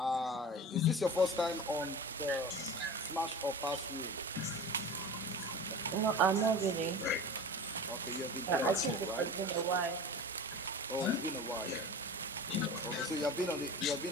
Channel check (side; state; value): both; normal; correlation 0.34